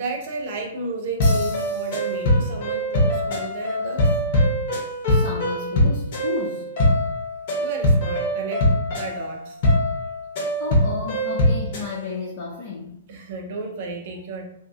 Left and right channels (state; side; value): inverted; both; correlation -0.46